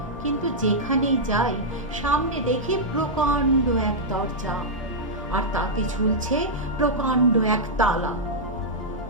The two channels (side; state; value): both; normal; correlation -0.09